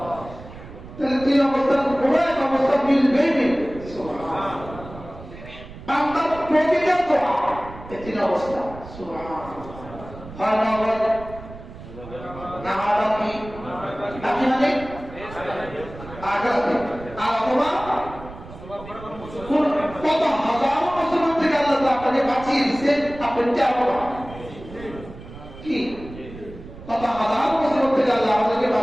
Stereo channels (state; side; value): noise; right; rumble, 15 dB below the sound